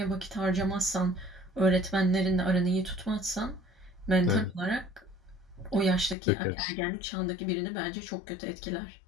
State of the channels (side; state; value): right; drops out; at 6.2 s